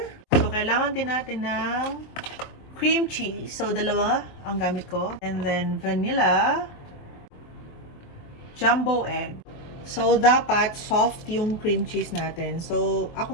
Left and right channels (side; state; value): right; late; 23 ms